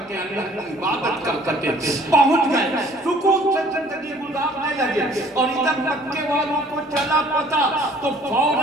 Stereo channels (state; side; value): normal; both; correlation 0.55